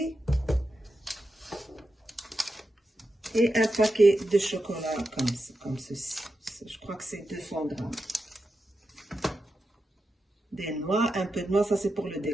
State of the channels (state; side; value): normal; both; correlation 0.89